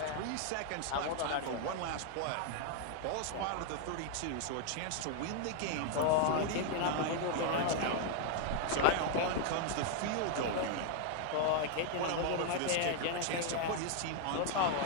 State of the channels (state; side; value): different; both; correlation 0.00